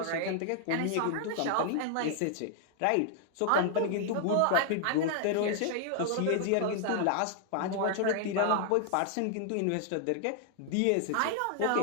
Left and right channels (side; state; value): both; different; correlation -0.01